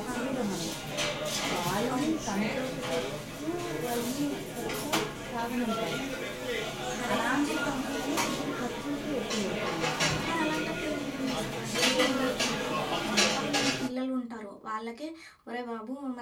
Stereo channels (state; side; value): identical; both; correlation 1.00